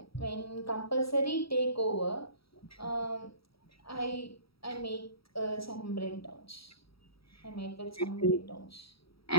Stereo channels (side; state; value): right; late; 0.75 ms